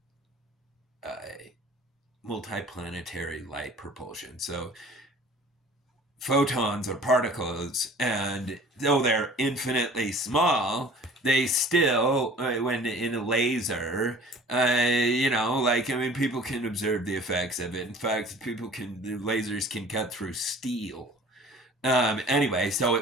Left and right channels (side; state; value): both; normal; correlation 0.47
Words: multiplanetary light propulsion. So photons are particles, and though they're infinitely small, they still, when in a laser, you know, like, I mean, people can observe the effects of it. In fact, the lasers can cut through steel. Anyway, so